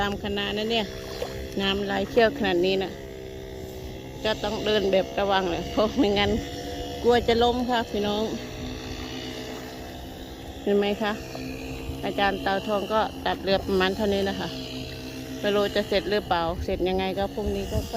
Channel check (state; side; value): identical; both; correlation 1.00